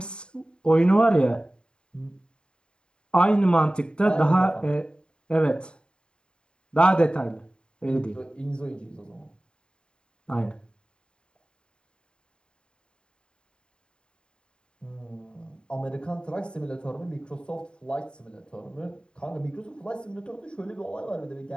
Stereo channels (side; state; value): right; late; 0.050 ms